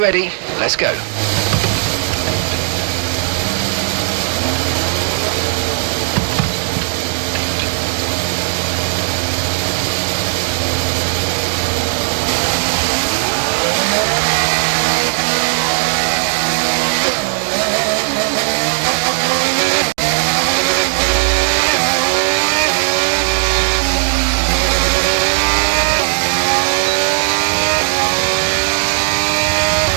ready, let's go.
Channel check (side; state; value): left; silent; digital silence